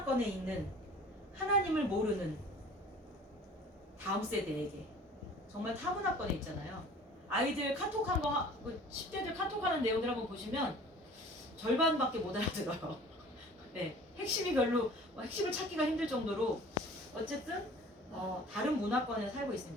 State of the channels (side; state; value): both; normal; correlation 0.46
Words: 있는 하나님을 모르는 다음 세대에게, 정말 타문화권에 있잖아요. 아이들 카톡한 거, 10대들 카톡하는 내용들 한번 보시면 절반밖에 못 알아들어요. 네, 핵심이 별로, 핵심을 찾기가 힘들 정도로 어쨌든 다른 문화권에 살고